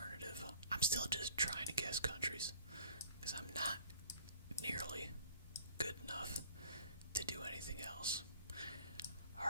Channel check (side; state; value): both; inverted; correlation -0.52